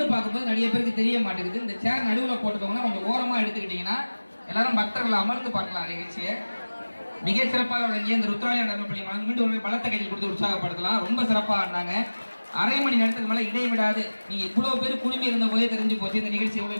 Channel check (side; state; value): both; inverted; correlation -1.00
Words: பார்க்கும்போது நிறைய பேருக்கு தெரிய மாட்டேங்குது. இந்த சேர் நடுவில் போட்டுக்கோங்கன்னா கொஞ்சம் ஓரமா எடுத்துக்கிட்டீங்கன்னா எல்லாரும் பக்தர்கள் அமர்ந்து பார்க்கலாம் நிகழ்ச்சியை. மிக சிறப்பாக வழங்கிய இந்த ருத்ராலயா நடனப்பள்ளி மாணவர்கள் மீண்டும் ஒரு பலத்த கையில் கொடுத்து உற்சாகப்படுத்தலாம். ரொம்ப சிறப்பாக ஆடினாங்க. அரை மணி நேரத்துக்கு மேல இடைவிடாது நீங்க இவ்வளவு பேர் குழுமி இருந்த போதே தெரிஞ்சு போச்சு இந்த நிகழ்ச்சி